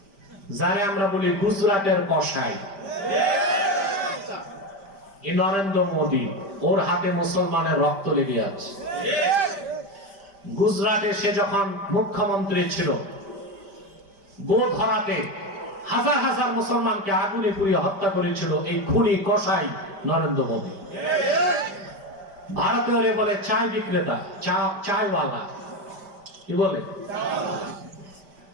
যারে আমরা বলি গুজরাটের কসাই, এই নরেন্দ্র মোদী, ওর হাতে মুসলমানের রক্ত লেগে আছে। গুজরাটে সে যখন মুখ্যমন্ত্রী ছিল, গোধরাতে হাজার হাজার মুসলমানকে আগুনে পুড়িয়ে হত্যা করেছিল এই খুনি কসাই নরেন্দ্র মোদী। ভারতীয়রে বলে চায় বিক্রেতা, চায়ওয়ালা, কি বলে?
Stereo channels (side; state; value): left; late; 5.1 ms